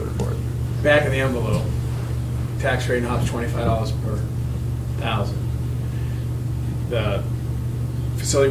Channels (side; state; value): both; identical; correlation 1.00